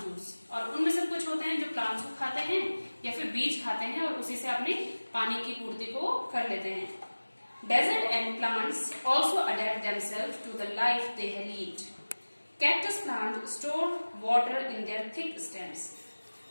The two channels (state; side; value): inverted; both; correlation -1.00